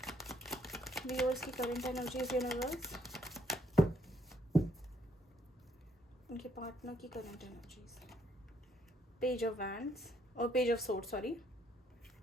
व्यूअर्स की करंट एनर्जीज, यूनिवर्स, उनके पार्टनर की current energies, page of wands और page of sword, sorry,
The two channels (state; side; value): normal; both; correlation 0.70